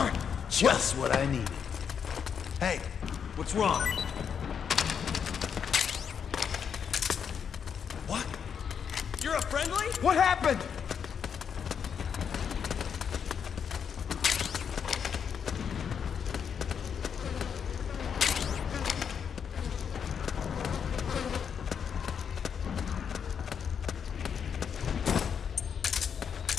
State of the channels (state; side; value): quieter; right; 7.3 dB